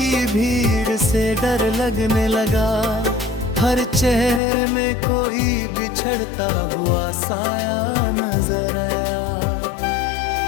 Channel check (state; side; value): drops out; right; at 4.4 s